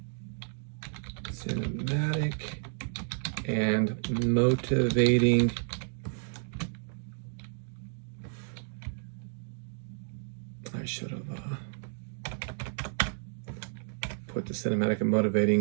and motivating I should have put the cinematic and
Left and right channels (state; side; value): silent; left; digital silence